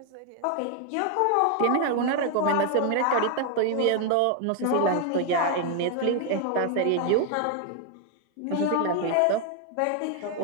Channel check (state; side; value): different; both; correlation 0.00